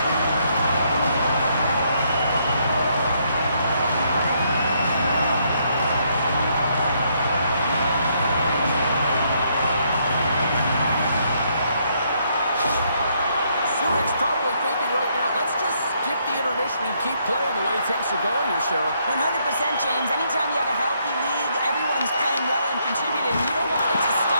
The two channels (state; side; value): inverted; both; correlation -0.73